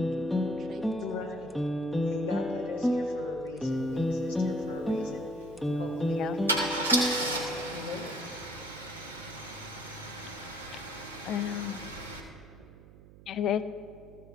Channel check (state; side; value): noise; right; hum, 20 dB below the sound